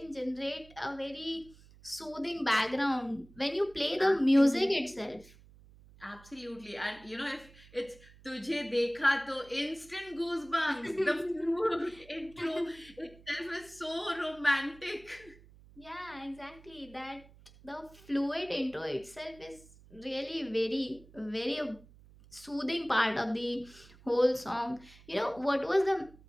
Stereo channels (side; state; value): right; noise; hum, 23 dB below the sound